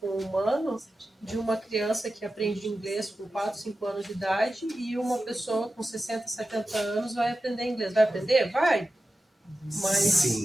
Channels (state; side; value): normal; both; correlation 0.93